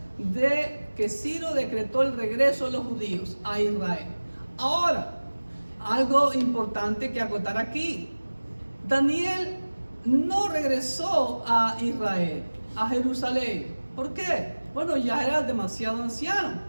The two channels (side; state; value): both; inverted; correlation -1.00